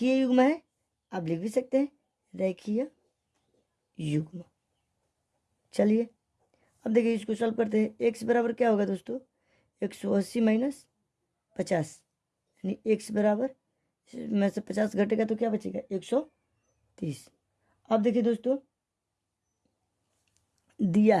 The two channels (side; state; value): both; identical; correlation 1.00